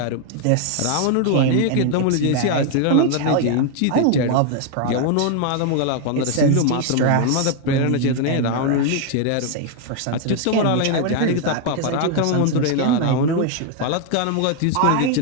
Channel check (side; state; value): both; different; correlation 0.00